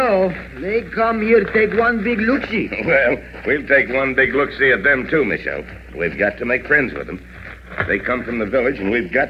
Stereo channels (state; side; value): identical; both; correlation 1.00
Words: They come here to take one big look-see. Well, we'll take one big look-see at them, too, Michelle. We've got to make friends with them. They come from the village, and we've